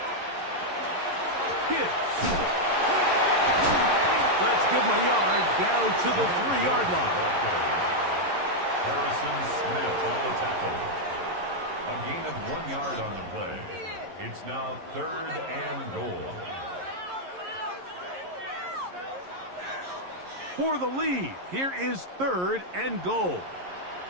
Gibbs. Let's give him a yard down to the 3-yard line. Harrison Smith on the tackle. A gain of 1 yard on the play. It's now 3rd and goal. For the lead, here is 3rd and goal.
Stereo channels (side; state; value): left; late; 11 ms